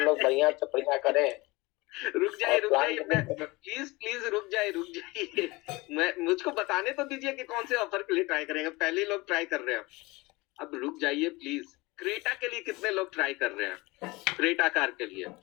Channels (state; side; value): quieter; right; 22.9 dB